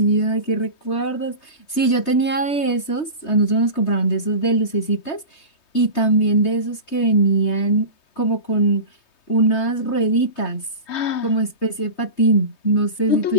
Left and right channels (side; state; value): right; late; 3.2 ms